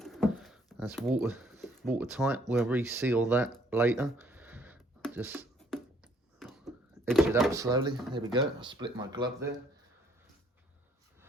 That's watertight. We'll reseal that later. Just edge it up slowly. There we go. I split my glove there.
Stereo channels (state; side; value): normal; both; correlation 0.64